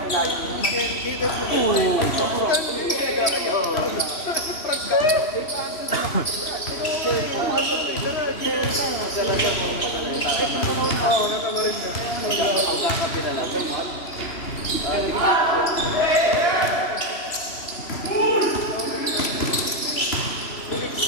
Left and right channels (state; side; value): late; right; 2.9 ms